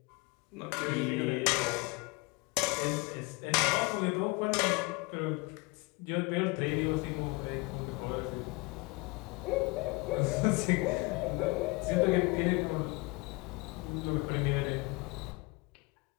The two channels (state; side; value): quieter; right; 26.0 dB